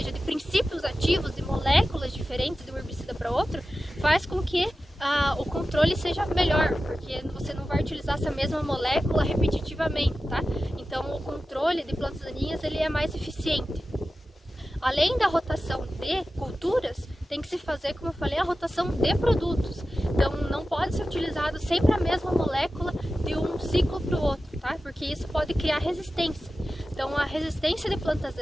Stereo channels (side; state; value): both; normal; correlation 0.94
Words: de princípios ativos, de moléculas diferentes de um herbicida para outro, faz com que o controle seja melhor, porque você não vai utilizar essa mesma molécula repetitivamente, tá? Então o controle de plantas daninhas ele é mais eficiente. Além da rotação de culturas, tem que se fazer, como eu falei, a rotação de produtos. Então não pode ser utilizado sempre a mesma molécula de um ciclo para o outro, tá? Porque isso pode criar resistência. Então a resistência de plantas